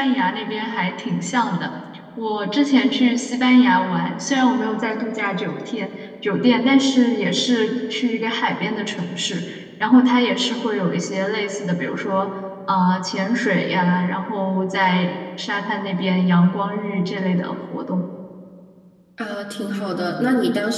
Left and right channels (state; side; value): identical; both; correlation 1.00